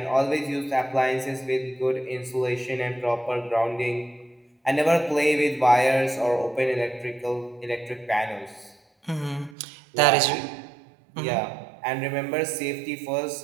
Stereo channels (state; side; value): drops out; left; at 9.6 s